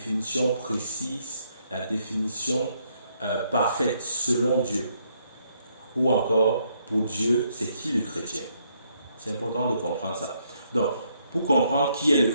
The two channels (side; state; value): both; inverted; correlation -0.73